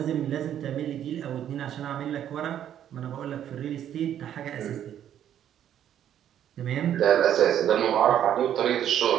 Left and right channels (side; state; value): left; quieter; 10.4 dB